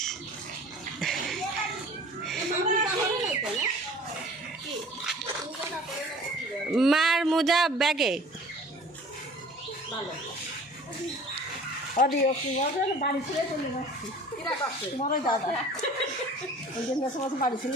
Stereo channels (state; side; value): normal; both; correlation 0.46